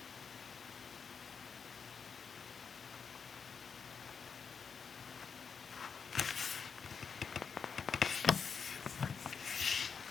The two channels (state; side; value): quieter; right; 6.1 dB